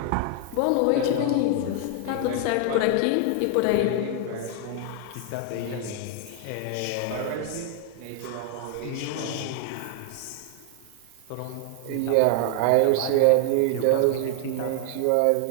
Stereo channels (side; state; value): both; different; correlation 0.00